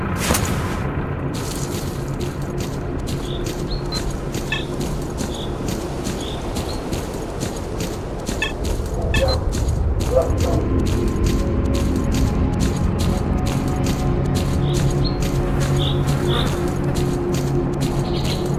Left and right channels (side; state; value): both; identical; correlation 1.00